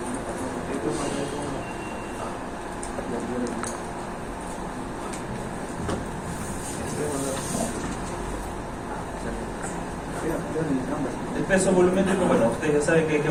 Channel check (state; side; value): identical; both; correlation 1.00